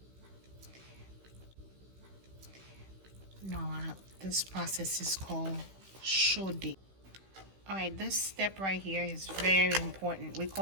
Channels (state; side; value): late; left; 16 ms